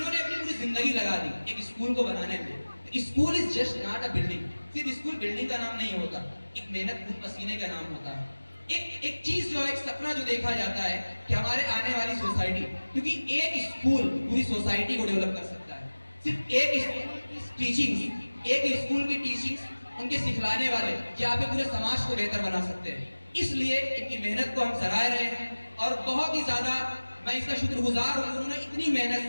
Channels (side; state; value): both; inverted; correlation -1.00